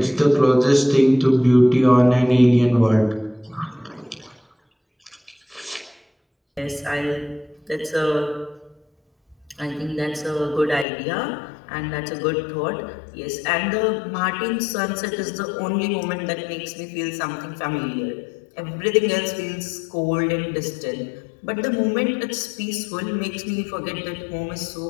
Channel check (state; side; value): drops out; right; at 10.9 s